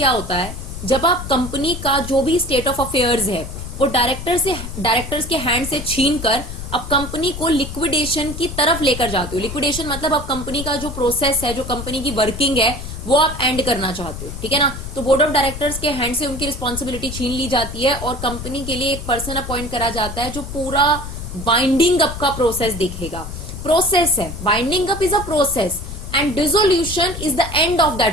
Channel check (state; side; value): noise; left; rumble, 9 dB below the sound